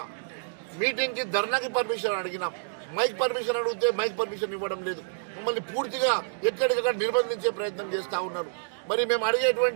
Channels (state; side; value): silent; left; digital silence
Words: మీటింగ్ కి, ధర్నాకి పర్మిషన్ అడిగినాం. మైక్ పర్మిషన్ అడిగితే మైక్ పర్మిషన్ ఇవ్వడం లేదు. మమ్మల్ని పూర్తిగా ఎక్కడికక్కడ నిర్బంధించే ప్రయత్నం చేస్తా ఉన్నారు. మరి మేము